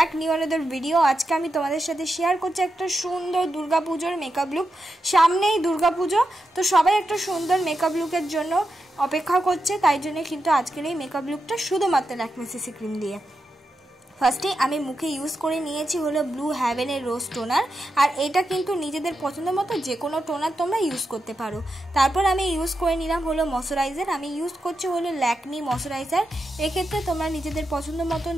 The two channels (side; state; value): both; normal; correlation 0.88